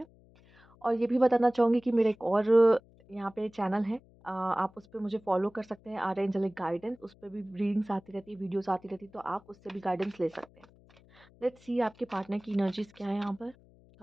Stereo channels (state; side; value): noise; left; hum, 27 dB below the sound